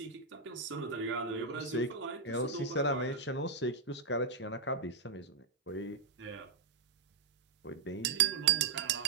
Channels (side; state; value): left; quieter; 4.4 dB